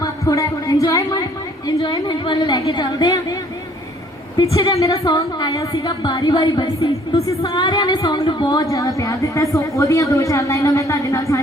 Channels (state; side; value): normal; both; correlation 0.59